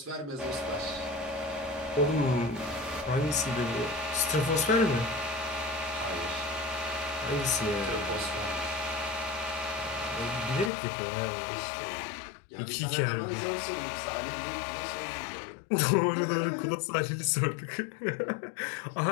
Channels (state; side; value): drops out; right; at 10.7 s